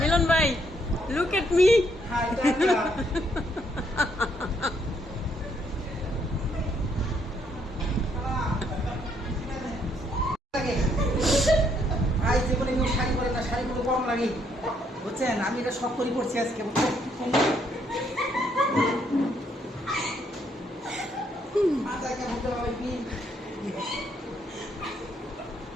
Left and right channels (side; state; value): both; normal; correlation 0.72